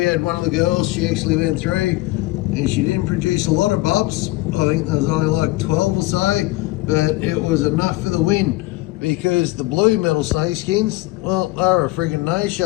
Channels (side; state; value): right; quieter; 19.8 dB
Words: had one of the girls, she actually went through and she didn't produce a lot of bubs. I think there was only like 12 or so, but it was enough for the win because the blue metal snakeskins, well, they were a friggin'